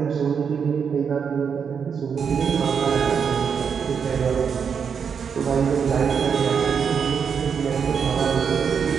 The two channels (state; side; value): quieter; left; 6.7 dB